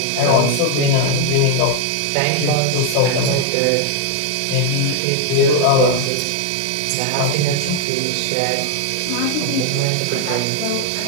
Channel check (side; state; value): both; different; correlation 0.00